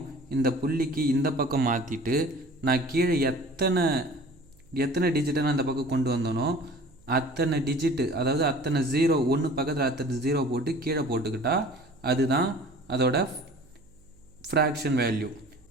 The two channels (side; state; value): right; noise; hum, 28 dB below the sound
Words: இந்த புள்ளிக்கு இந்த பக்கம் மாற்றிட்டு நான் கீழே எத்தனை டிஜிட்டை நான் இந்த பக்கம் கொண்டு வந்தனோ அத்தனை டிஜிட்டு, அதாவது அத்தனை 0 1 பக்கத்தில் அத்தனை 0 போட்டு கீழே போட்டுக்கிட்டா அதுதான் அதோட ஃப்ராக்ஷன் வேல்யூ.